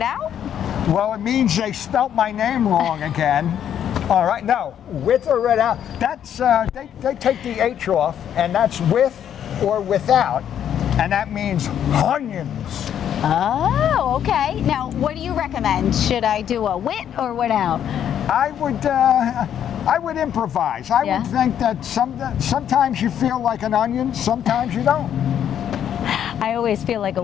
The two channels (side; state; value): right; quieter; 9.6 dB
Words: Well, it means they spelt my name wrong again. All right, no, with or without. That's, they take the H off, and that's with or without, and that means onions. Oh, okay. Now, what do you recommend? Should I do a with or without? I would improvise. I Yeah. would think that sometimes you feel like an onion, sometimes you don't. I always feel like a